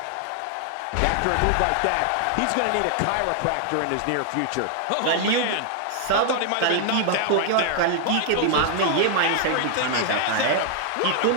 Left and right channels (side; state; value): both; different; correlation 0.00